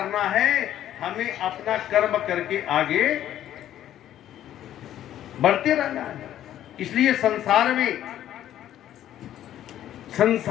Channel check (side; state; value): right; quieter; 11.8 dB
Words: है, हमें अपना कर्म करके आगे बढ़ते रहना है। इसलिए